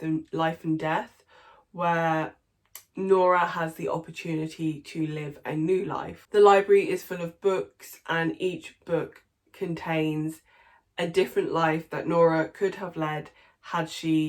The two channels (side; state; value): both; identical; correlation 1.00